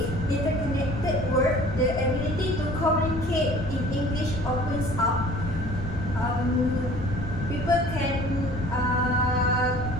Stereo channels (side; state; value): left; noise; rumble, 7 dB below the sound